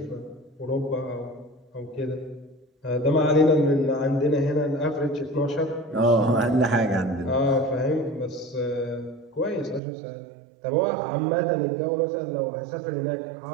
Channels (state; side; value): drops out; left; at 9.8 s